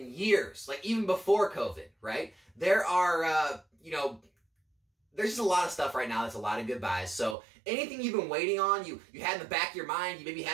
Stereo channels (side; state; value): left; drops out; at 7.4 s